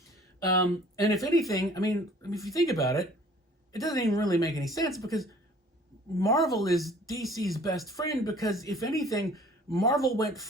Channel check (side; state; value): both; normal; correlation 0.52